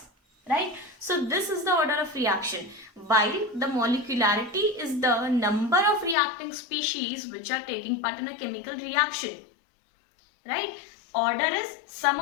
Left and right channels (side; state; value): right; drops out; at 6.2 s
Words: right? So this is the order of reaction, while the molecularity is the number of reacting species which are taking part in a chemical reaction, right? Order is sum